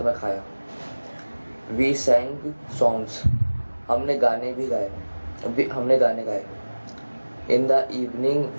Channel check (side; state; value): both; inverted; correlation -1.00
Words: में खाया। वी सैंग सॉन्ग्स, हमने गाने गाए। In the evening